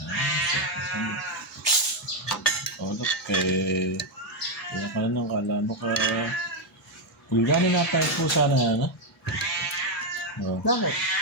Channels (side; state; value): both; normal; correlation 0.03